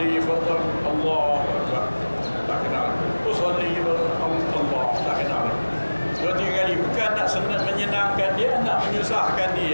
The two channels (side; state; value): both; inverted; correlation -1.00